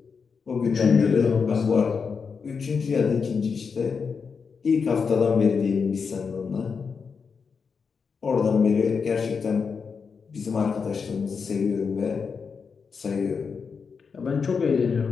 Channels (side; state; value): right; quieter; 5.6 dB